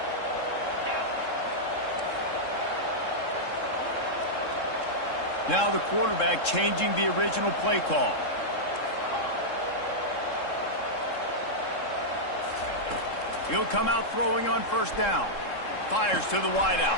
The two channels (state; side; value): late; right; 3.7 ms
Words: Now the quarterback changing the original play call. He'll come out throwing on 1st down. Fires to the